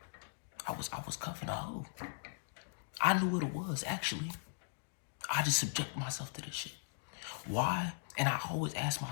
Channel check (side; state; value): right; silent; digital silence